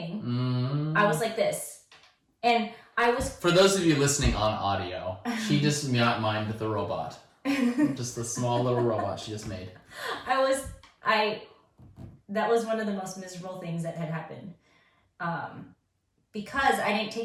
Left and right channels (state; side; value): identical; both; correlation 1.00